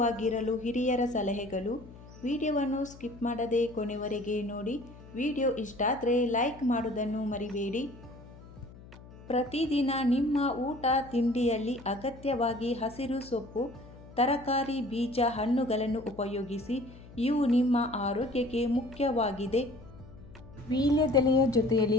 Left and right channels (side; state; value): left; noise; hum, 19 dB below the sound